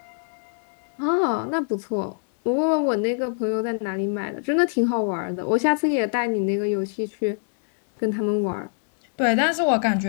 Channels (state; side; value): silent; right; 62 dB below the other